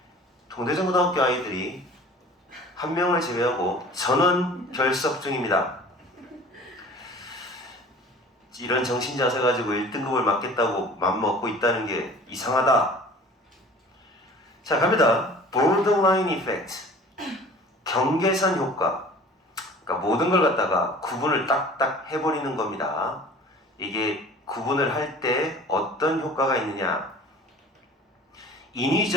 동대전고등학교 아이들이 한 명을 제외하고 전원 결석 중입니다. 이런 정신자세 가지고 1등급을 맞겠다고 맘먹고 있다는 게 이상하다. 자, 갑니다. borderline effect, 경계선 효과. 그러니까 모든 걸 갖다가 구분을 딱딱 해버리는 겁니다. 이게 구분을 할 때 어떤 효과가 있느냐.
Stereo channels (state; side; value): normal; both; correlation 0.45